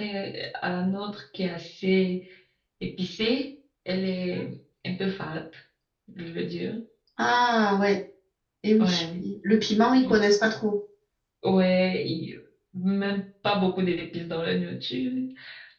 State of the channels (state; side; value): identical; both; correlation 1.00